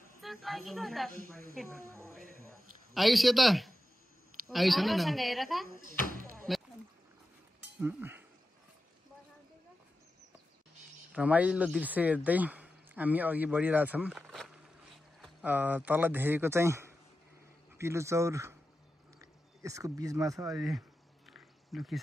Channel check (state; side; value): normal; both; correlation 0.92